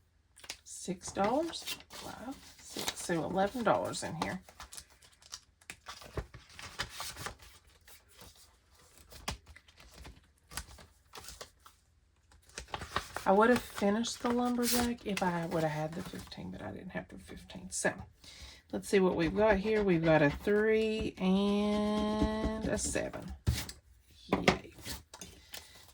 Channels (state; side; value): identical; both; correlation 1.00